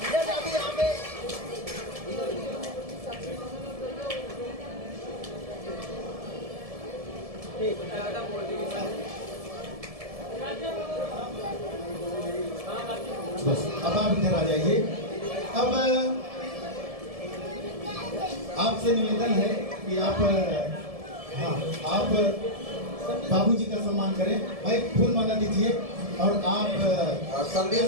यहाँ पे बस अब आप इधर आ जाइए। अब आपसे निवेदन है कि आप आप बाबूजी का सम्मान करें। भाई फूल माला दीजिए और आप संदेश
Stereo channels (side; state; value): left; late; 1.7 ms